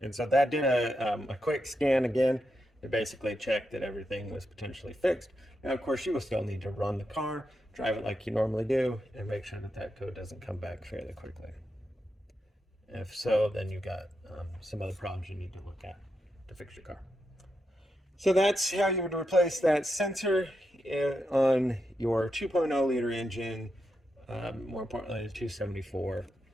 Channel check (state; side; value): normal; both; correlation 0.85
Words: And so that did a quick scan again to basically check that everything was potentially fixed. Now, of course, you will still need to run the car, drive it like you normally do, and make sure that that code doesn't come back fairly quickly. If so, then you've got some other problems you need to look at to fix your car. So that's how you would replace that sensor on your 2.0 liter engine, more importantly, the 274